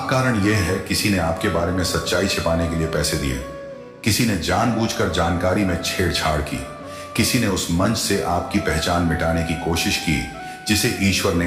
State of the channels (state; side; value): identical; both; correlation 1.00